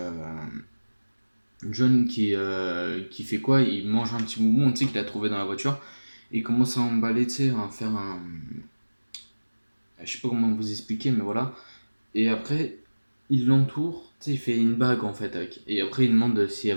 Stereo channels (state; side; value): inverted; both; correlation -1.00